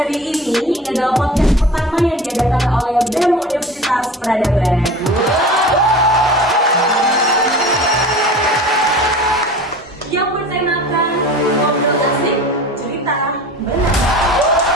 ini, ini adalah podcast pertama yang diadakan oleh BEM Universitas Peradaban. Yang bertemakan ngobrol asik, cerita benar.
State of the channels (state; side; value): normal; both; correlation 0.38